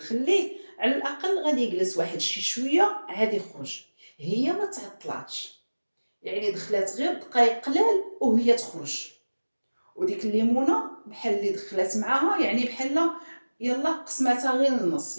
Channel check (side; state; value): both; inverted; correlation -1.00